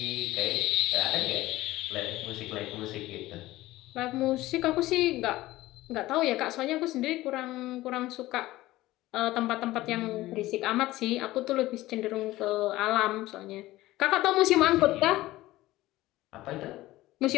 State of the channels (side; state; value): right; quieter; 17.2 dB